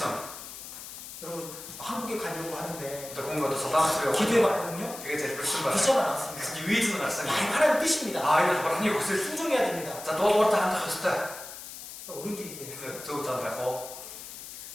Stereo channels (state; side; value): noise; left; hiss, 12 dB below the sound